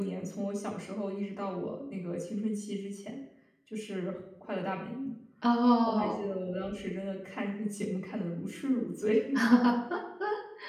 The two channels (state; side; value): identical; both; correlation 1.00